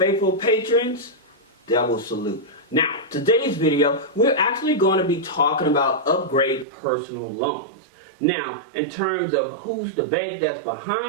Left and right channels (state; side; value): drops out; left; at 6.7 s